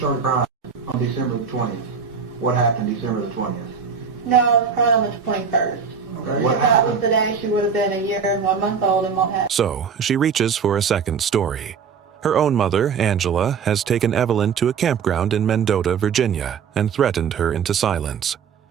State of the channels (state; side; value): quieter; left; 6.3 dB